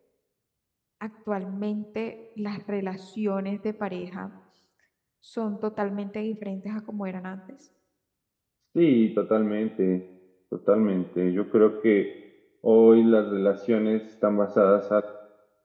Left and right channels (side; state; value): both; identical; correlation 1.00